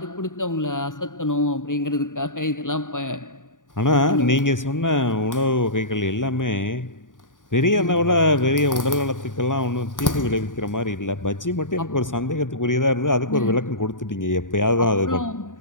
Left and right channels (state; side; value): late; right; 0.88 ms